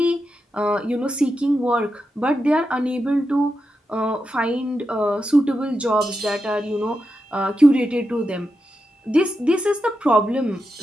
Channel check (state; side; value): normal; both; correlation 0.88